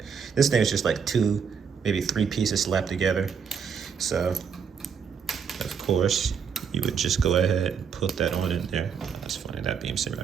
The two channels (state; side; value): quieter; left; 6.7 dB